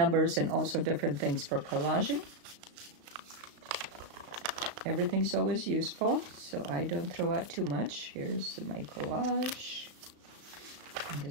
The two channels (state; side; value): late; left; 35 ms